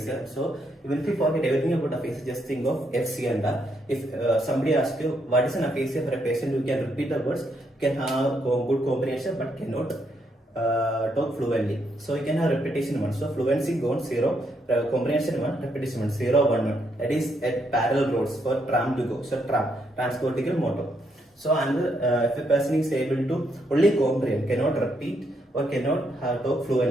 So even if you forget everything about aphasia, just think of F, C and R. If somebody asks you what is an aphasia for a patient who can repeat the words, can have good comprehension but cannot talk fluently. So you can have repetition 1. So fluency gone 0, comprehension 1, repetition 1, 0, 1, 1. That is at parallel roads for tram to go. So tram, transportical motor. So another, if a person is able to only comprehend, cannot repeat or cannot talk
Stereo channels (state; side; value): normal; both; correlation 0.76